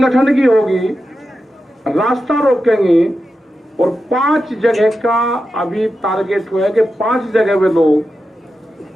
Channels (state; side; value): normal; both; correlation 0.90